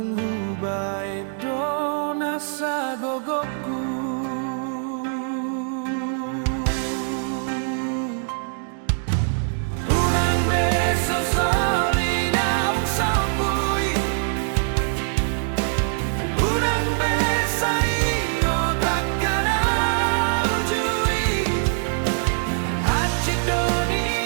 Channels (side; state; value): left; silent; digital silence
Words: hubae dona sagogoku unang beso soli naung saupui unang besa ingo takana ujui hacik